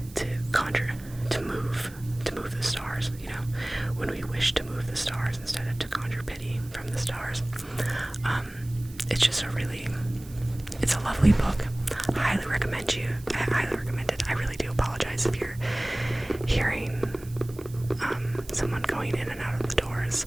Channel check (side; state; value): right; noise; hiss, 21 dB below the sound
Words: to conjure, to move the stars, you know, when we wish to move the stars instead of to conjure pity from the stars. It's just it's a lovely book. I highly recommend it. I really do apologize if you're hearing someone going in and out of the doors.